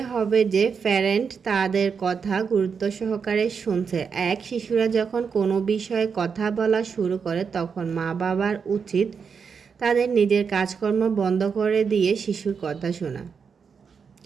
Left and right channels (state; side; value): quieter; left; 6.1 dB